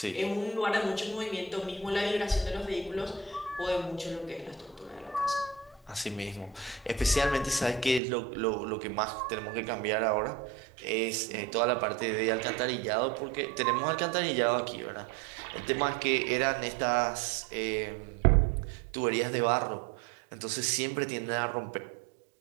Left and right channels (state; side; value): drops out; left; at 8.0 s